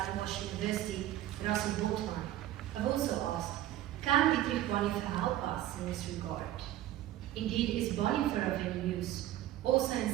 University, Russell Boltman, have also asked, can Dietrich Bonhoeffer help us in this regard? Indeed, is Bonhoeffer of any use, also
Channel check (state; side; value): quieter; left; 13.6 dB